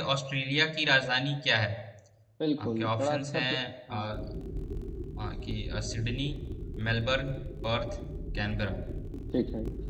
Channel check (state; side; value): identical; both; correlation 1.00